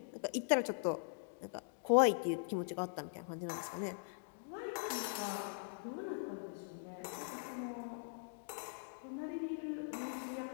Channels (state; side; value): silent; right; digital silence